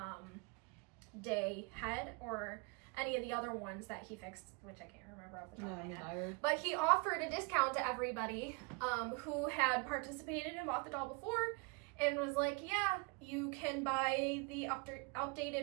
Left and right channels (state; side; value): quieter; left; 30.3 dB